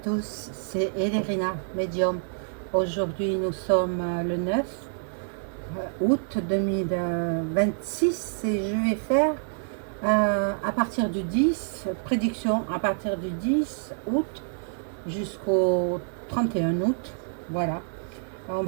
c'est Elérina, médium. Aujourd'hui, nous sommes le 9 août 2026 et je vais faire à partir du 10, prédiction à partir du 10 août jusqu'au 31 août. Voilà. On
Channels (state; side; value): silent; left; 57 dB below the other